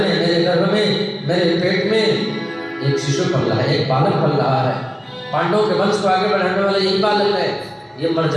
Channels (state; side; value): identical; both; correlation 1.00